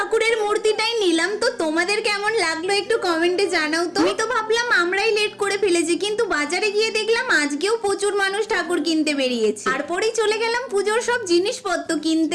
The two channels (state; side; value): identical; both; correlation 1.00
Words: মূর্তিটাই নিলাম। তো তোমাদের কেমন লাগলো একটু কমেন্টে জানাও তো। আমি তো ভাবলাম আমরাই লেট করে ফেলেছি, কিন্তু বাজারে গিয়ে দেখলাম আজকেও প্রচুর মানুষ ঠাকুর কিনতে বেরিয়েছে। তারপরেই চলে গেলাম পুজোর সব জিনিসপত্র